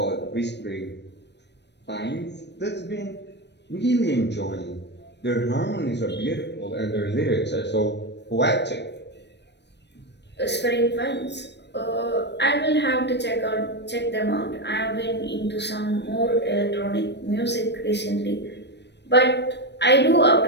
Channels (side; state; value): right; late; 0.50 ms